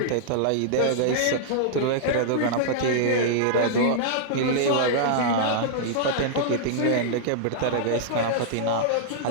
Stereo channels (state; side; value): different; both; correlation -0.02